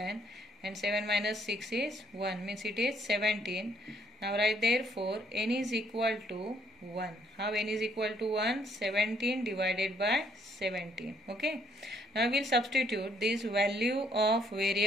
and 7 minus 6 is 1, means it is 17. Now write therefore n is equal to 1. How n is equal to 1? 17 divided by 17. Okay. Now we will substitute this value of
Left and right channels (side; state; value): both; normal; correlation 0.68